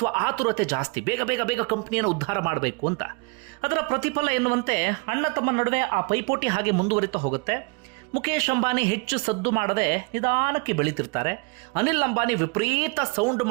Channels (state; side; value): quieter; left; 29.8 dB